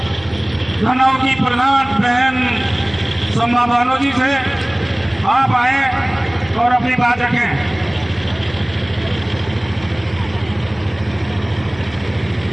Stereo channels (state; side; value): noise; right; hum, 22 dB below the sound